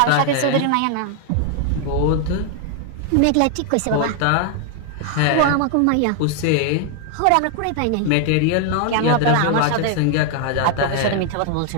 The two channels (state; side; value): different; both; correlation 0.00